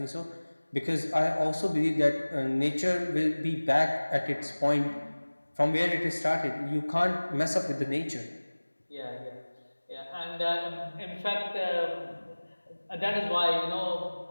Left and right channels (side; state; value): both; inverted; correlation -1.00